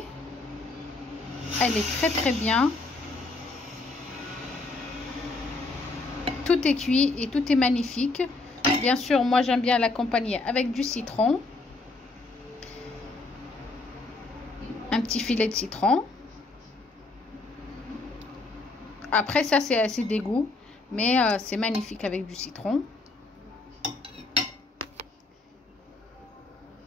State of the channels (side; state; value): right; quieter; 3.3 dB